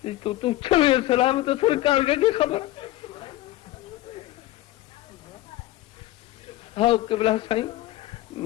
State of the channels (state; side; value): quieter; right; 16.3 dB